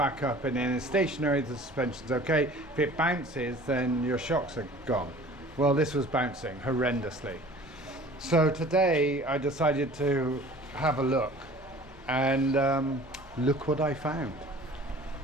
up and then it's stationary, the suspension's okay. If it bounces, then your shocks are gone. Well, this was bouncing horrendously. So today I decided to have a look, and look what I found.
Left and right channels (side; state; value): both; normal; correlation 0.46